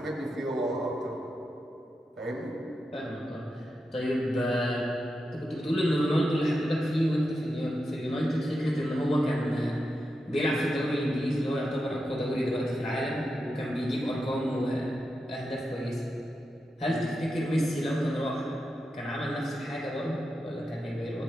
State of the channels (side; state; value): both; normal; correlation 0.88